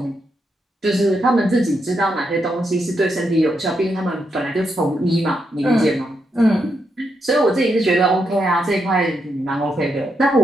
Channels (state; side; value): normal; both; correlation 0.81